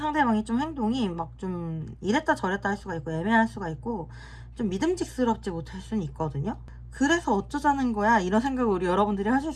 좀 행동이 막 좀 이랬다 저랬다 할 수가 있고 애매할 수가 있고 좀 믿음직스럽지 못할 수는 있거든요. 그래서 어쩌자는 거야 이런 생각을 우리 여러분들이 하실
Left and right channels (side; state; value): both; identical; correlation 1.00